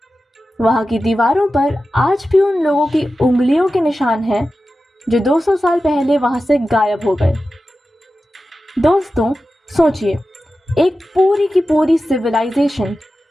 वहां की दीवारों पर आज भी उन लोगों की उंगलियों के निशान हैं जो 200 साल पहले वहां से गायब हो गए। दोस्तों, सोचिए, एक पूरी की पूरी सिविलाइजेशन,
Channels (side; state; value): both; normal; correlation 0.93